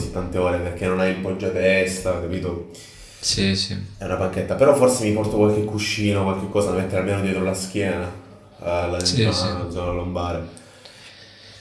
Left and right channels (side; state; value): both; identical; correlation 1.00